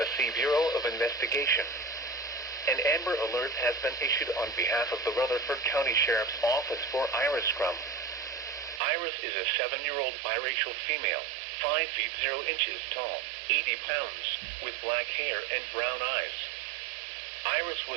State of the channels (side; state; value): left; drops out; at 8.8 s